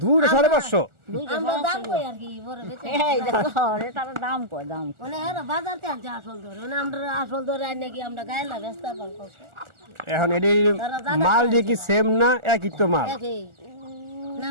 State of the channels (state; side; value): late; left; 1.4 ms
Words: 2.5 এখন এডি মাল দিয়ে কি সেম না একই তো মাল?